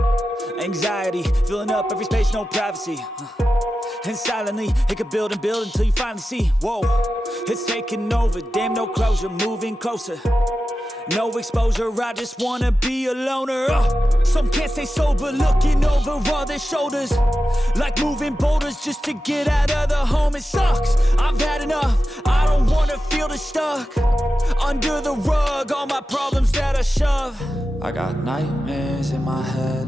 Anxiety, filling up every space, no privacy. And silently, it could build and build until you finally see, whoa, it's taking over, damn no closure, moving closer. No exposure, I just wanna be a loner. Some can't stay sober, looking over all their shoulders, like moving boulders just to get out of the home. It sucks, I've had enough, I don't wanna feel the stuck under the rug, all my problems that I shove. I got nightmares in my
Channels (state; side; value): normal; both; correlation 0.92